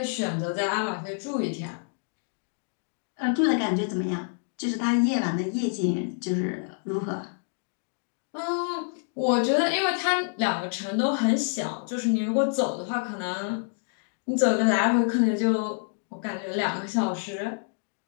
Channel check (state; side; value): silent; right; digital silence